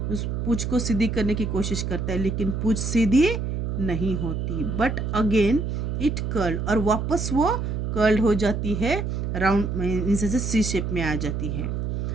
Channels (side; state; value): right; noise; hum, 2 dB below the sound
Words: उस पूंछ को सीधी करने की कोशिश करता है, लेकिन पूंछ सीधी नहीं होती। बट अगेन इट कर्ल्ड, और वापस वो कर्ल्ड हो जाती है, राउंड से सी शेप में आ जाती है।